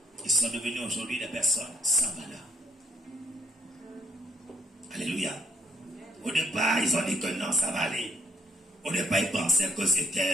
Ils sont devenus aujourd'hui des personnes sans valeur. Alléluia. Au départ, ils ont dit que non, ça va aller. Au départ, ils pensaient que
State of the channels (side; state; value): both; normal; correlation 0.67